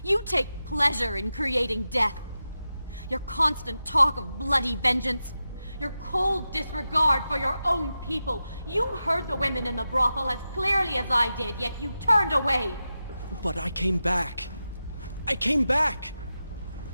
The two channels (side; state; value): both; inverted; correlation -0.91